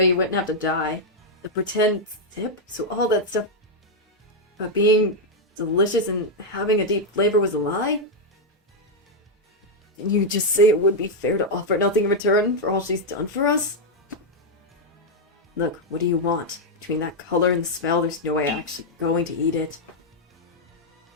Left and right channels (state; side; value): normal; both; correlation -0.02